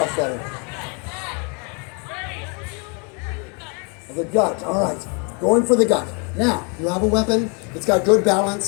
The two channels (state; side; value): quieter; right; 35.5 dB